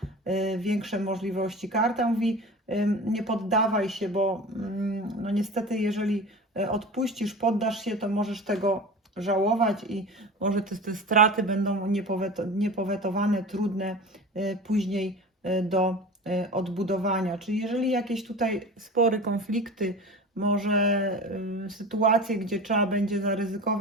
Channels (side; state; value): both; normal; correlation 0.34